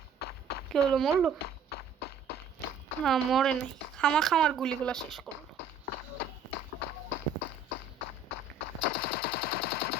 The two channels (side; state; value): left; quieter; 4.5 dB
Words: কি হলো, মরলো? না মরে নাই, খামার গুলিগুলা শেষ করলো।